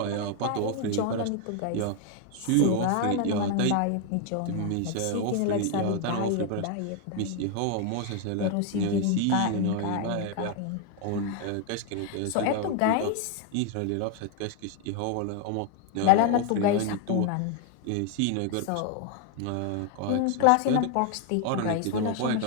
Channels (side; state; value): both; different; correlation 0.01